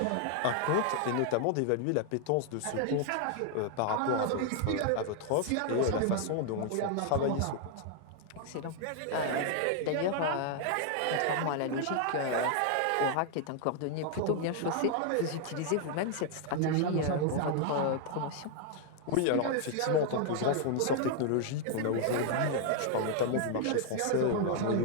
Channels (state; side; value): different; both; correlation 0.00